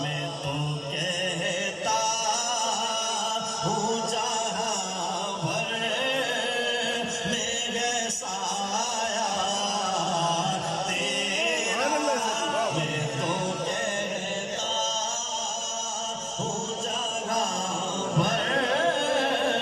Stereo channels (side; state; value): both; identical; correlation 1.00